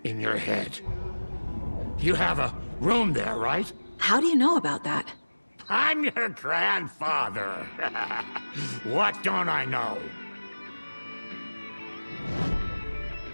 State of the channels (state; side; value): inverted; both; correlation -1.00